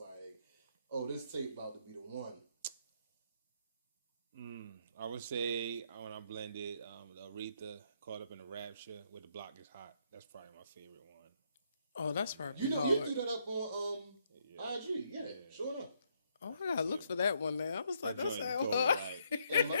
oh, this tape about to be the one. I would say when I blended Aretha, Caught Up in the Rapture with The Block Is Hot. That's probably my favorite one. Oh, that's probably You hard. threw that up on IG, yeah, sure enough. Oh, I gotta look for that one now. I was like, that's how Joint hard. And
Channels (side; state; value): both; inverted; correlation -0.73